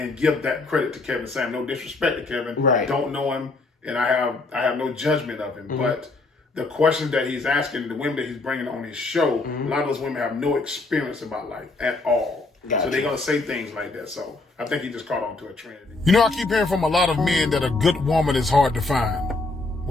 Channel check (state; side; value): quieter; right; 3.3 dB